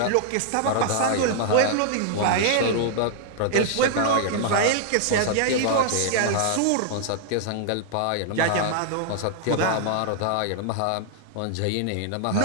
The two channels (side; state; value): both; different; correlation 0.00